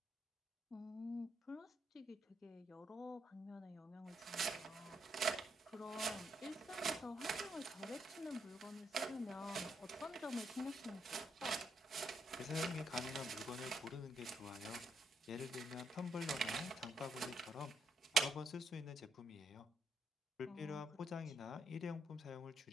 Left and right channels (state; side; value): normal; both; correlation 0.77